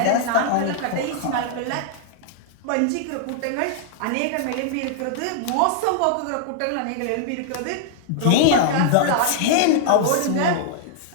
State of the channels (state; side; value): different; both; correlation -0.01